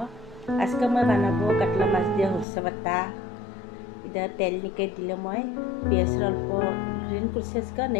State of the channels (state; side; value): drops out; right; at 2.5 s